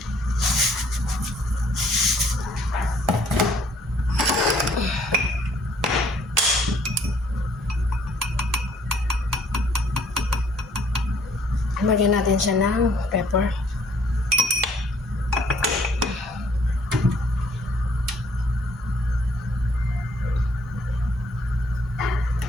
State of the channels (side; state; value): both; normal; correlation 0.62